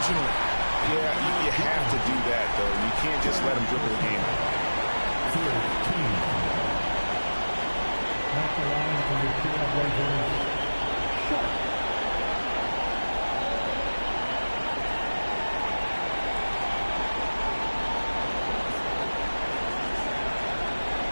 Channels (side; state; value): both; inverted; correlation -1.00